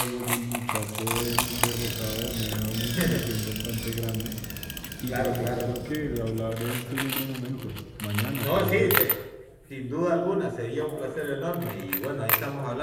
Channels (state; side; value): identical; both; correlation 1.00